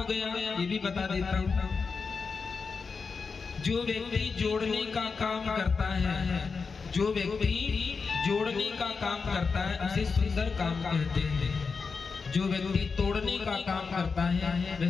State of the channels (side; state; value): right; quieter; 5.0 dB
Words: गया ये भी बता देता हूँ। जो व्यक्ति जोड़ने का काम करता है, जो व्यक्ति जोड़ने का काम करता है उसे सुंदर काम कहते हैं। जो व्यक्ति तोड़ने का काम करता है वह